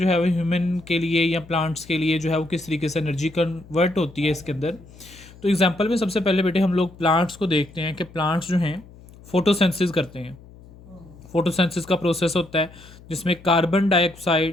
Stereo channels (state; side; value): noise; left; hum, 21 dB below the sound